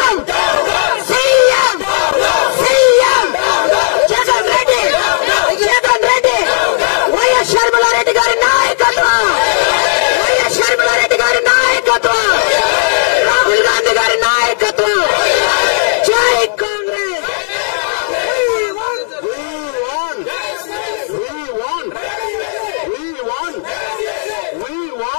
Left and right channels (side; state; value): right; silent; digital silence